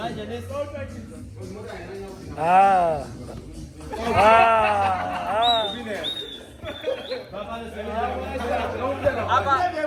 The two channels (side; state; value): both; identical; correlation 1.00